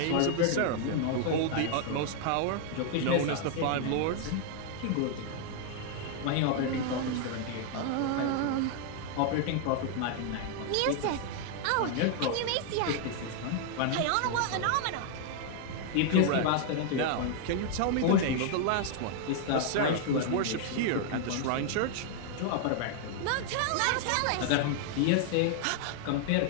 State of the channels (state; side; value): different; both; correlation 0.00